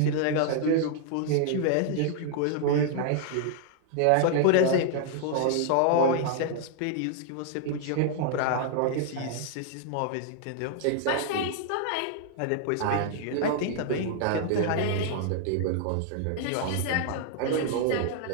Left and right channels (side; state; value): both; different; correlation 0.00